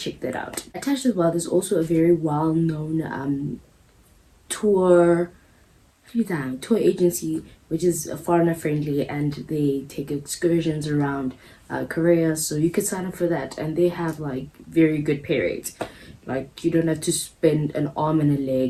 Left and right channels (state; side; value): identical; both; correlation 1.00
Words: that out. Attached as well, there's also a very well-known tour tour agency, which is foreigner friendly, and they take excursions around Korea. So you could sign up for that, and they have like very good pay rates. Like you don't have to spend an arm and a